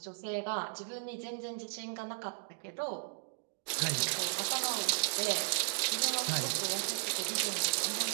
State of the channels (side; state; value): left; silent; digital silence